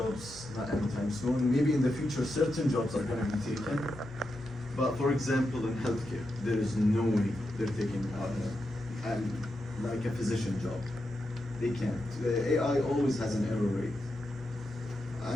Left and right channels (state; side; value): normal; both; correlation 0.87